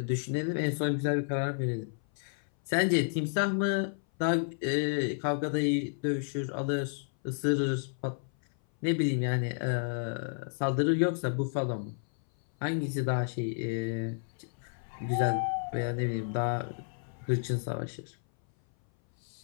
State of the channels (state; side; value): silent; right; 57 dB below the other